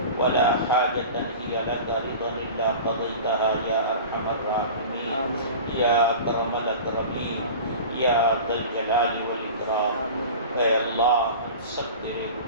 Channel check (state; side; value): inverted; both; correlation -0.36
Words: ولا حاجة هي لك رضا إلا قضيتها يا أرحم الراحمين يا أكرم الأكرمين يا ذا الجلال والإكرام. اے اللہ ہم سب تیرے